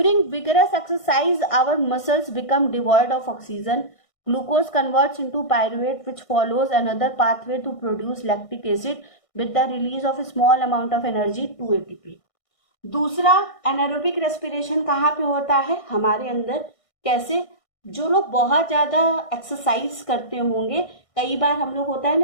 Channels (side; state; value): right; late; 1.6 ms